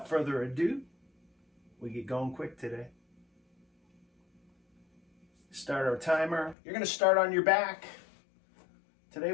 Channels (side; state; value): right; drops out; at 6.6 s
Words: further ado, we get going quick today. Start our timer. You're going to start on your back. Today